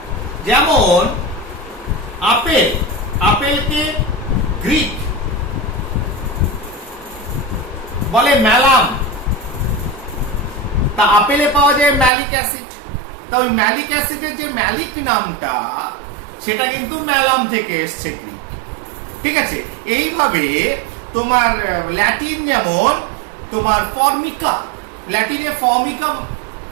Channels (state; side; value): drops out; left; at 12.1 s